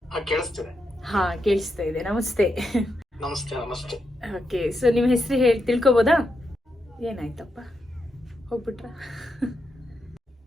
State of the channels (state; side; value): normal; both; correlation 0.84